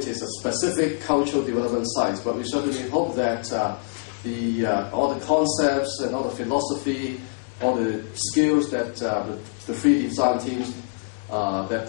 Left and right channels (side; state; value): right; silent; digital silence